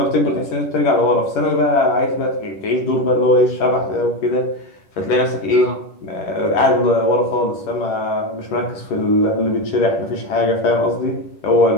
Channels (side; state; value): right; late; 11 ms